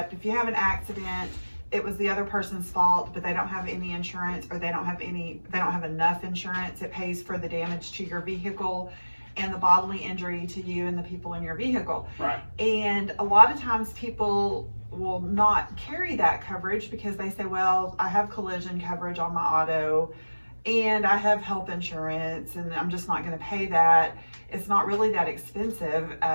If you have an accident, it was the other person's fault, but they don't have any insurance, or they don't have enough insurance. It pays for the damage to your vehicle and the bodily injury to you and the people in your vehicle. Right. And a lot of times people will not carry that coverage because they say, well, I have collision coverage on my auto and I have health insurance and I'm just not going to pay that. It's not really that expensive.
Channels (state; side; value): inverted; both; correlation -1.00